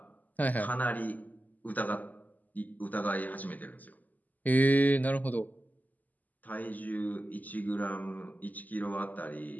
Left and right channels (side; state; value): right; late; 0.081 ms